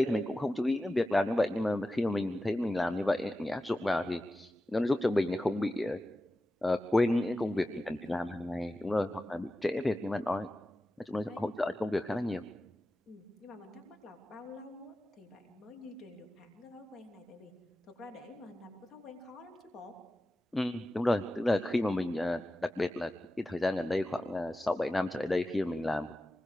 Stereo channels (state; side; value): normal; both; correlation 0.94